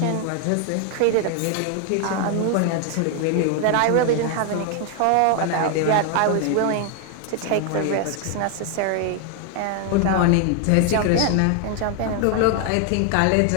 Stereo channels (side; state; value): both; different; correlation 0.00